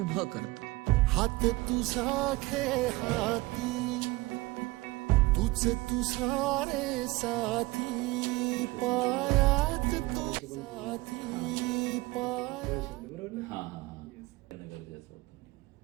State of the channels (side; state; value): left; quieter; 21.6 dB